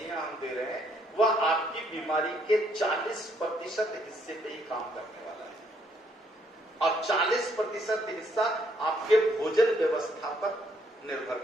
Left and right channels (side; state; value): both; normal; correlation 0.70